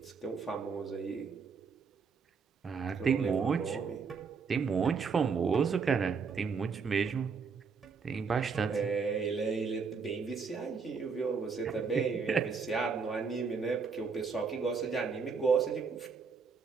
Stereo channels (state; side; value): quieter; left; 5.4 dB